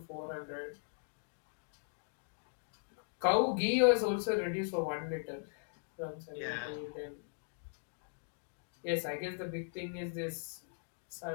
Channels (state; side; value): silent; right; digital silence